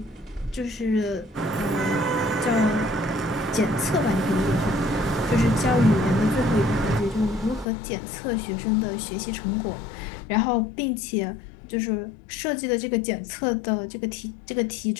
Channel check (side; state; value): right; drops out; at 7.7 s